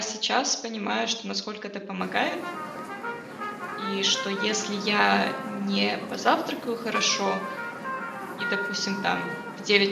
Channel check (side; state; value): both; identical; correlation 1.00